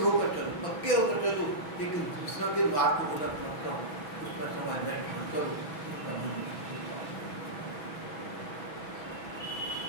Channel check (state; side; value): late; right; 6.1 ms